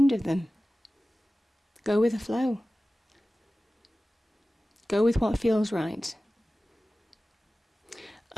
of them. Go with the flow. Go with what feels right.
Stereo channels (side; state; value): both; normal; correlation 0.96